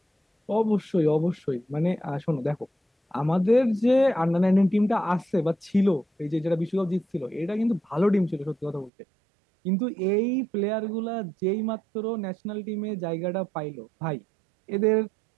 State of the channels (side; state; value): left; drops out; at 8.9 s